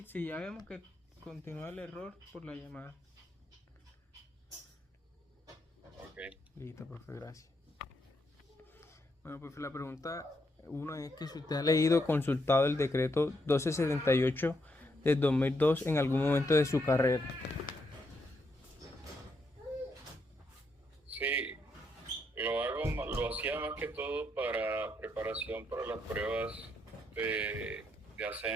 si ya vemos que continúa el error por la llamada. Ok. Listo, profe, gracias. Bueno, profe, la pregunta uno es que si usted ha leído o consultado el decreto 1278 del 2002 en algún momento de su carrera. Sí, lo hacía más que todo para preparación para las pruebas de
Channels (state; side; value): normal; both; correlation 0.78